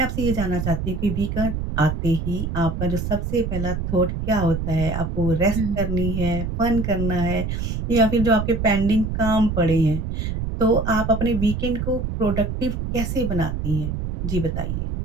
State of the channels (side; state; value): right; noise; rumble, 3 dB below the sound